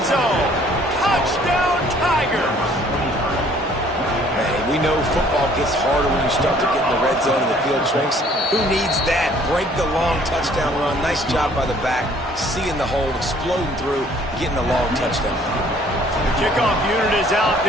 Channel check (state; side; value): normal; both; correlation 0.58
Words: zone. Touchdown, Tigers. Hey, we know football gets harder when you start to get in the red zone and the field shrinks. Who needs that? Break the long touchdown run. Nice job by the back. Seeing the hole, exploding through, getting a long touchdown run. The kickoff unit is out